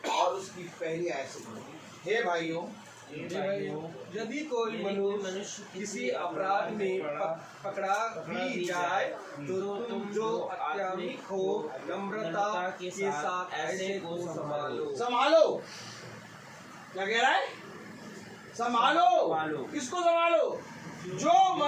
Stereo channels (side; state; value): both; identical; correlation 1.00